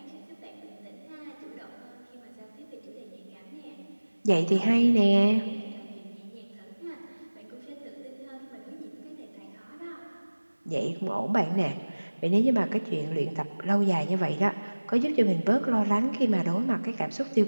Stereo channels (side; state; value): both; inverted; correlation -1.00